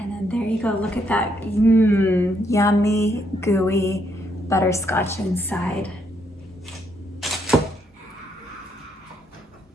then there you go, look at that, yummy, gooey butterscotch inside.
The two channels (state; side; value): normal; both; correlation 0.74